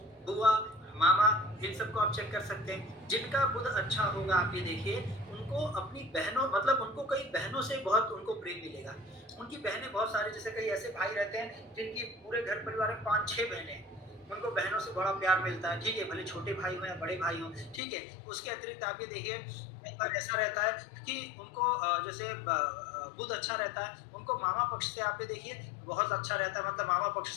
बुआ, मामा, इन सबको आप चेक कर सकते हैं। जिनका बुध अच्छा होगा आप ये देखिए उनको अपनी बहनों, मतलब उनको कई बहनों से बहुत उनको प्रेम मिलेगा। उनकी बहनें बहुत सारे, जैसे कई ऐसे भाई रहते हैं जिनकी पूरे घर परिवार में 5-6 बहनें हैं, उनको बहनों से बड़ा प्यार मिलता है। ठीक है, भले छोटे भाई हो या बड़े भाई हो। ठीक है, उसके अतिरिक्त आप ये देखिए कई बार ऐसा रहता है कि उनको जैसे बुध अच्छा रहता है, उनको मामा पक्ष से आप ये देखिए बहुत अच्छा रहता है, मतलब मामा पक्ष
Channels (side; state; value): right; drops out; at 17.8 s